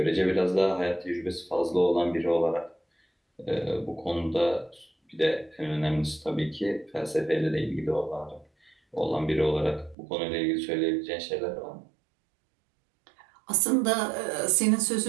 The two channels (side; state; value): left; drops out; at 10.0 s